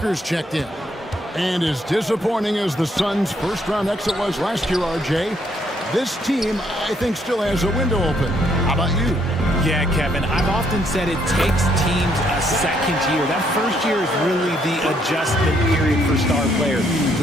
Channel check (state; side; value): normal; both; correlation 0.70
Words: checked in. And as disappointing as the Suns' first-round exit was last year, RJ, this team, I think, still has a window open. How about you? Yeah, Kevin, I've often said it takes teams a second year. That first year is really the adjustment period for star players.